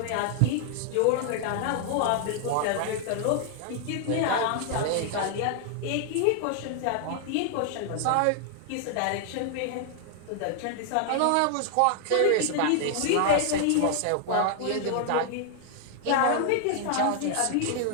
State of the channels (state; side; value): different; both; correlation 0.00